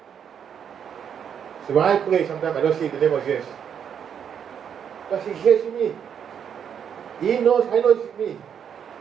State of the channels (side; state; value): left; quieter; 8.1 dB